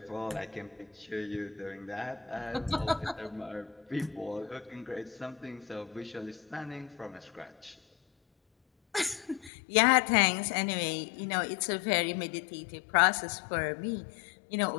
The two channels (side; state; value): right; drops out; at 9.5 s